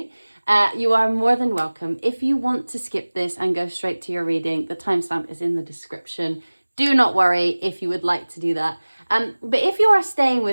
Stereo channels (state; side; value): inverted; both; correlation -1.00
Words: you are more than welcome. If you want to skip this and go straight to your reading, the timestamp is in the description. Do not worry if you would like to do that. But if you are staying